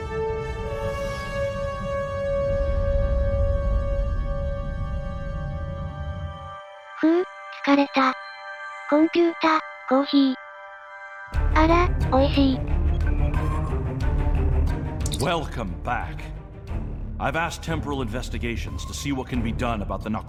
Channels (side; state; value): both; identical; correlation 1.00